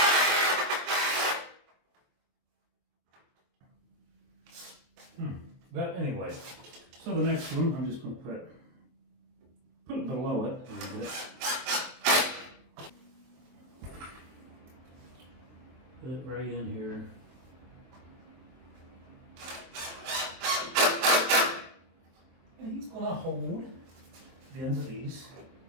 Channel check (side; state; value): left; late; 23 ms